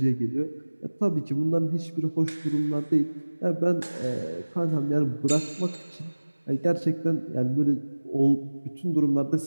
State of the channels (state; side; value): inverted; both; correlation -1.00